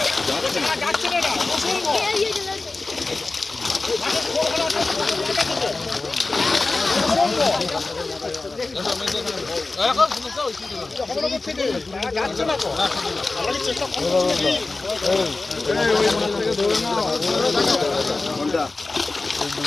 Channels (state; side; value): quieter; right; 3.4 dB